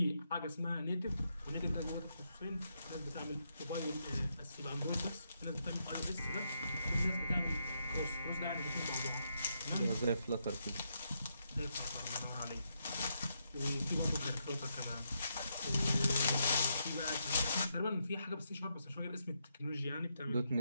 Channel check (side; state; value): both; inverted; correlation -0.80